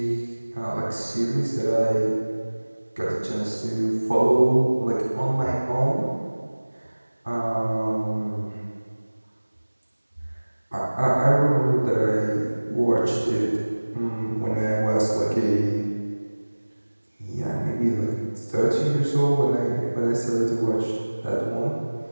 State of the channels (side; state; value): both; inverted; correlation -1.00